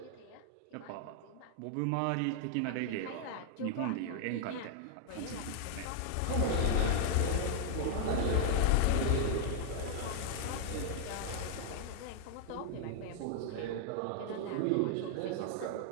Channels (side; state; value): both; different; correlation -0.01